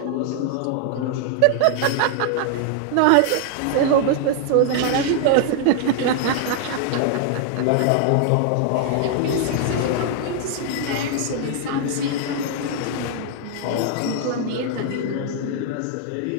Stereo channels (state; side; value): different; both; correlation 0.00